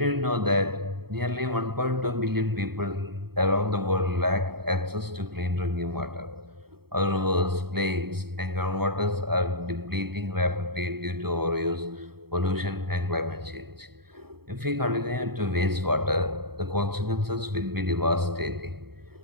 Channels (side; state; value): left; late; 0.95 ms